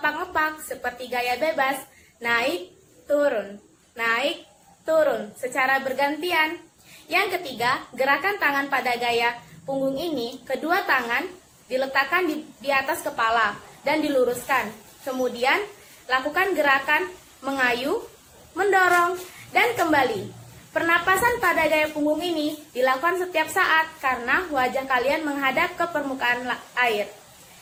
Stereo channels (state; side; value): identical; both; correlation 1.00